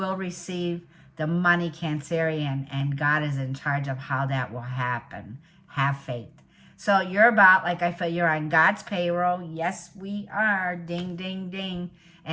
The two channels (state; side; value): identical; both; correlation 1.00